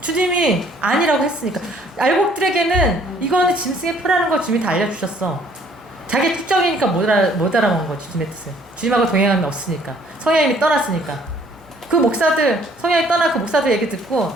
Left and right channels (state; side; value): normal; both; correlation 0.60